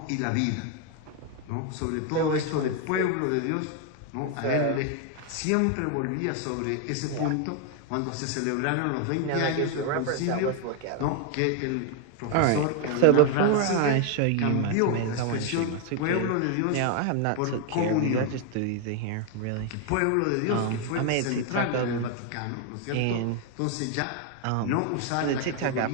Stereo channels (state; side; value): different; both; correlation 0.00